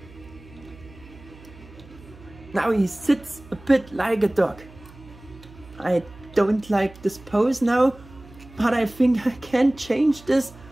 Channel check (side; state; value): right; noise; hum, 21 dB below the sound